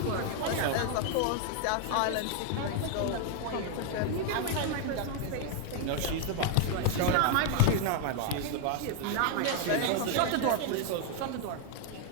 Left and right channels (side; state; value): both; different; correlation 0.00